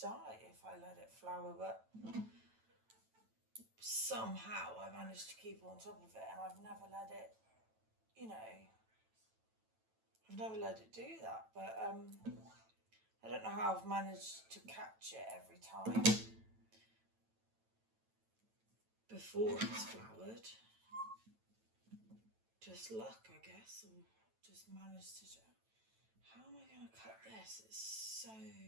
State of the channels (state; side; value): late; left; 9.1 ms